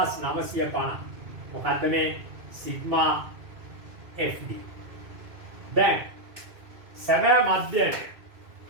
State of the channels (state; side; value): late; left; 2.6 ms